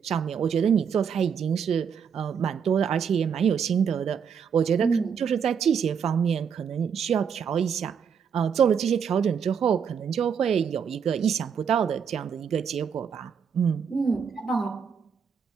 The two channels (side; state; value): left; quieter; 7.0 dB